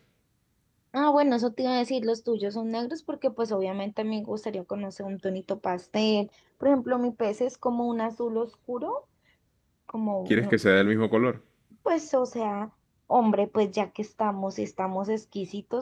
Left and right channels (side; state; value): both; identical; correlation 1.00